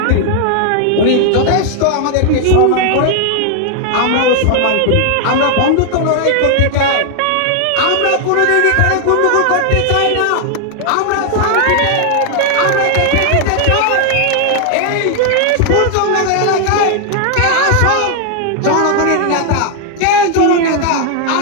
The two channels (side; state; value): both; different; correlation 0.00